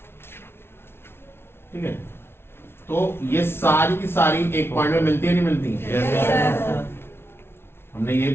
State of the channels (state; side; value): late; right; 0.12 ms